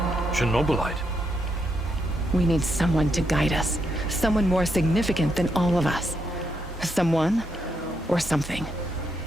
Chernobylite. We need someone to guide us. Someone more significant than all of us. Someone or something.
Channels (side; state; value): both; normal; correlation 0.79